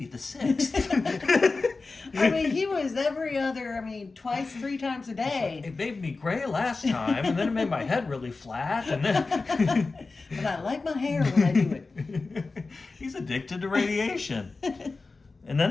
the 6th. I mean, he was twice, 3 times a day. It made me gray last time, and then it made my head really flat, and then. But I like my hair when I do it. He's addicted to radiation. And then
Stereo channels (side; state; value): right; quieter; 3.8 dB